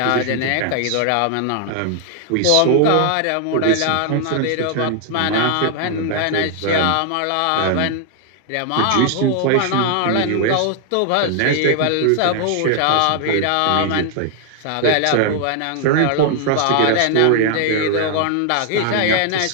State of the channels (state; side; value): different; both; correlation 0.00